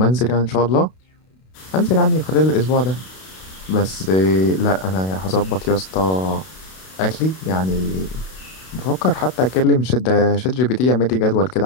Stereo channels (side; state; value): right; late; 32 ms